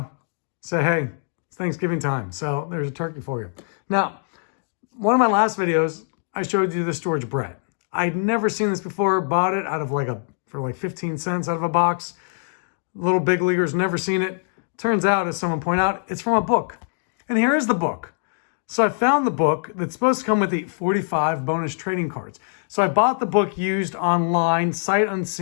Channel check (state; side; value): silent; right; digital silence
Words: say, hey, it's Thanksgiving time. So there's a turkey for you. Now, one of my last videos, I showed you the storage Brett. I'd never seen this before, bought it out of for 15 cents out of a box. Little big leaguers, never seen it. Turns out, as someone pointed out, it's from a book. And here is the book. So I found the book that's supposed to come with the 45 bonus trading cards. So I bought the book used online, sight